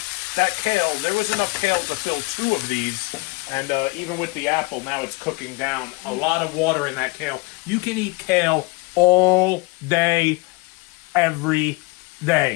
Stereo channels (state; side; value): quieter; right; 26.6 dB